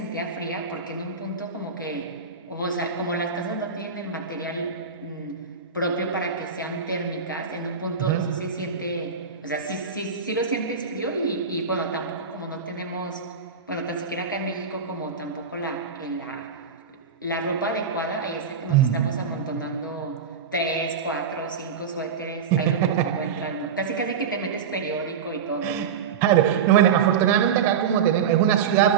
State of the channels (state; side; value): quieter; left; 6.3 dB